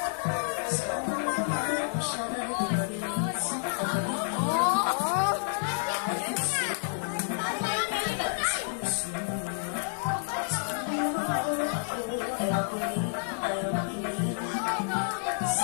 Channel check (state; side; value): silent; right; digital silence